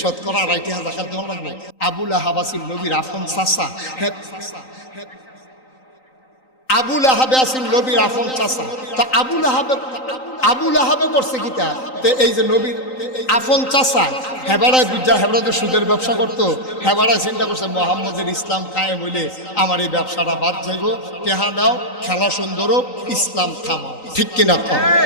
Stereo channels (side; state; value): right; late; 3.9 ms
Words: 2.5 টাকা জাকাত দেওয়ান লাগবে আবুল আহাব আছিল নবীর আফন চাচা আবুল আহাবে আছিল নবীর আফন চাচা তা আবুল আহাবে করছে কিতা তো এই যে নবীর আফন চাচা হেবাড়ায় বুঝা হেবাড়াতে সুদের ব্যবসা করতো হেবাড়ায় চিন্তা করছে মোহাম্মদের ইসলাম কায়েম হইলে আমার এই ব্যবসাটা বাদ যাইব টেহা দাও খেলা সুন্দর ইসলাম থামাও ঠিক কিনা কম